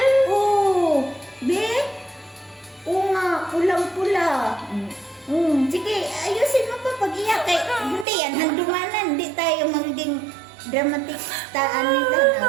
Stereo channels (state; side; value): drops out; left; at 8.1 s